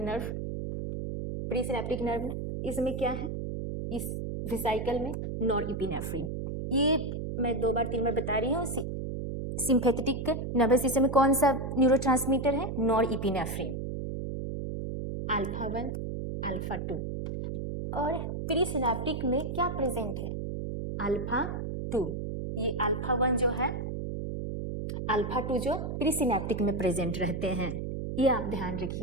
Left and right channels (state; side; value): noise; right; hum, 4 dB below the sound